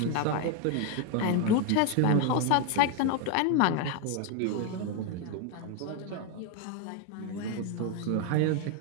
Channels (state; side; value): different; both; correlation 0.01